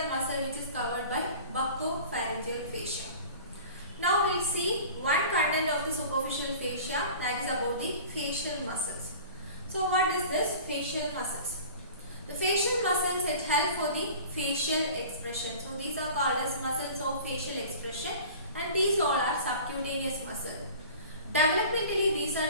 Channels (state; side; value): inverted; both; correlation -0.41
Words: muscle, which is covered by buccopharyngeal fascia. Now we will see one content of the superficial fascia, that is about the facial muscles. So what is this facial muscles? The facial muscles, it help for the facial expression. So these are called as muscles of facial expression and these all are subcutaneous muscle. Developmentally, these are